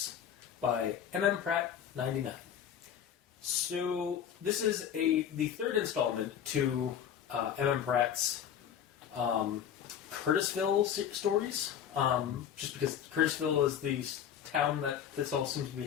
by M.M. Pratt 99. So this is the third installment to M.M. Pratt's Curtisville stories. Just because Curtisville is the town that this all seems to be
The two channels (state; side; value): quieter; right; 9.0 dB